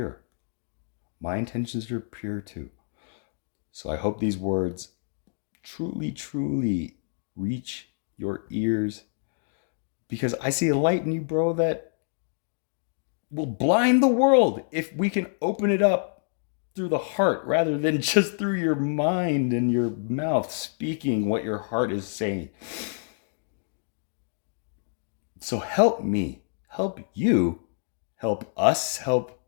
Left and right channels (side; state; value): right; silent; digital silence